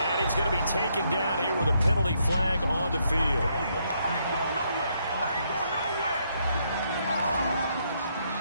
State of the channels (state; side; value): inverted; both; correlation -0.74